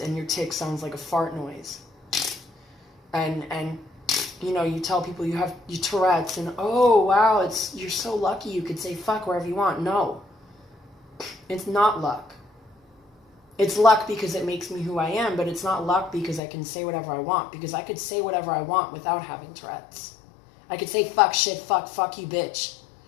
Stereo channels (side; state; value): right; drops out; at 16.4 s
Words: and your tic sounds like a fart noise. And you know, you tell people you have your Tourette's and, oh, wow, you're so lucky you could say fuck wherever you want. No, it's not luck. It's luck because it makes me who I am, but it's not luck because I can say whatever I want, because I could say whatever I want without having Tourette's. I could say fuck, shit, fuck you, bitch,